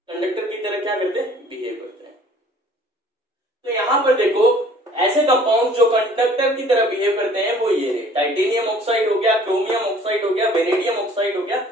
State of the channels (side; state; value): both; normal; correlation 0.53